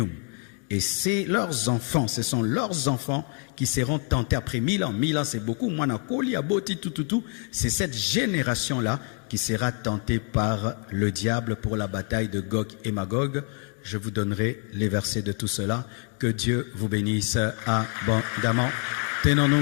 Et c'est leurs enfants, ce sont leurs enfants qui seront tentés après 1000 ans. 1000 ans, c'est beaucoup. C'est cette génération-là qui sera tentée par le diable pour la bataille de Gog et Magog. Je vous donnerai les versets de tout cela. Que Dieu vous bénisse abondamment.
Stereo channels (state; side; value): quieter; right; 38.3 dB